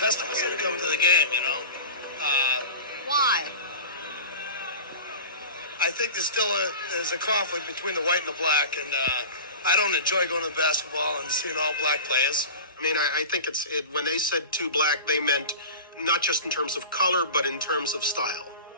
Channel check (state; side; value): inverted; both; correlation -0.33